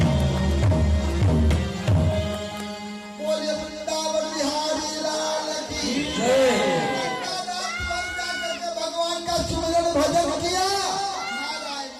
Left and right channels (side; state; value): both; identical; correlation 1.00